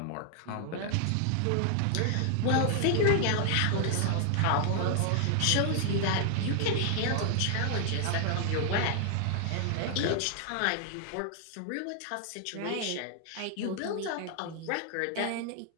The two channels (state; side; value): different; both; correlation 0.00